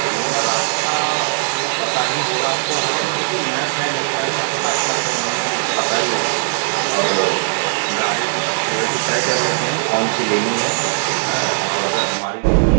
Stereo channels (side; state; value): left; silent; digital silence